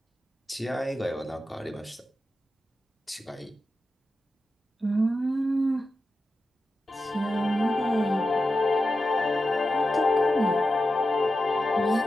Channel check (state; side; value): normal; both; correlation 0.90